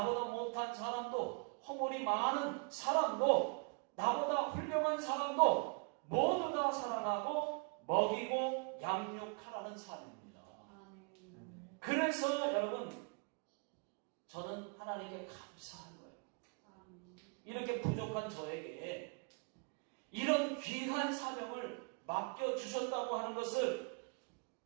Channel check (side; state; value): left; quieter; 37.5 dB